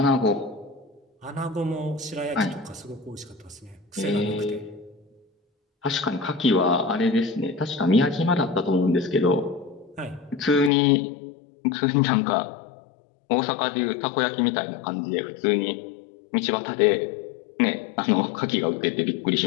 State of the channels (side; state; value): right; drops out; at 10.7 s